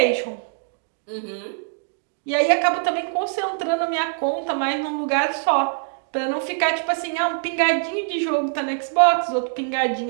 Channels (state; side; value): silent; left; digital silence